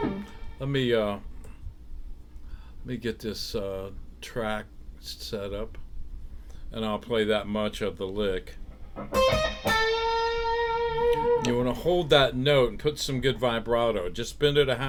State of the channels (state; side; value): identical; both; correlation 1.00